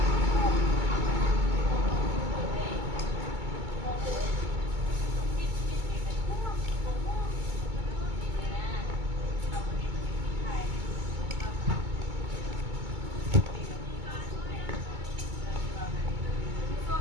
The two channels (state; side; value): late; left; 2.2 ms